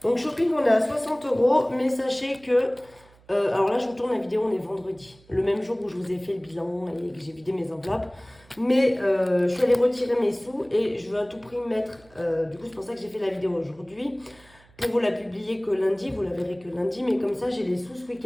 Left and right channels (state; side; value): noise; right; hum, 28 dB below the sound